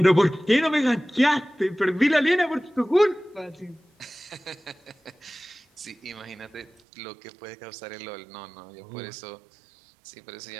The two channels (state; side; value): drops out; left; at 6.7 s